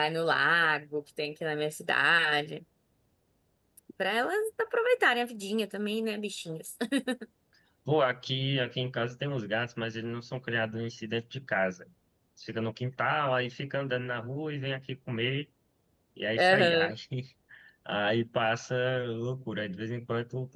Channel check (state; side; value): identical; both; correlation 1.00